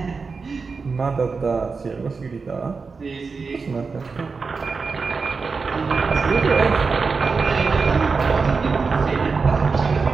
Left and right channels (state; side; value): quieter; left; 4.7 dB